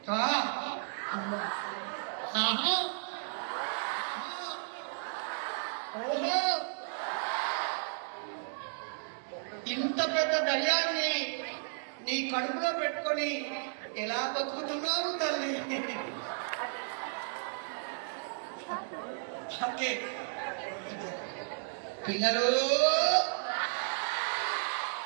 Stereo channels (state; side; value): silent; left; digital silence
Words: ఓహో, ఇంత పెద్ద దయ్యాన్ని నీ కడుపులో పెట్టుకొని ఎలా బతుకుతున్నావు తల్లి? ఓకే పిల్లలు,